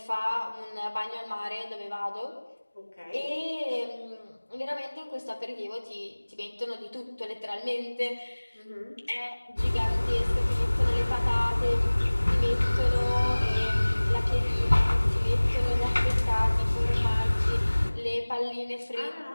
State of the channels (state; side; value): inverted; both; correlation -1.00